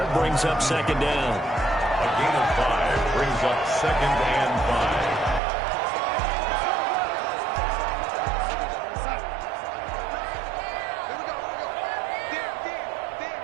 brings up 2nd down. A gain of 5 brings up 2nd and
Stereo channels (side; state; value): left; drops out; at 5.4 s